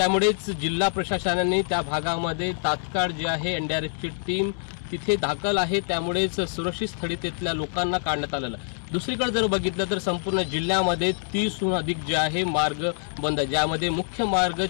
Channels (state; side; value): silent; right; digital silence